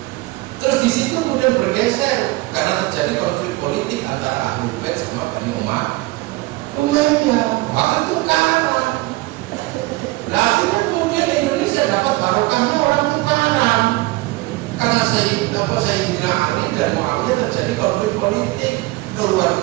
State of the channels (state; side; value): quieter; left; 20.7 dB